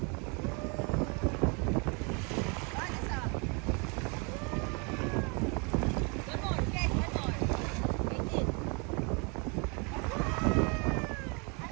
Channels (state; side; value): quieter; left; 32.6 dB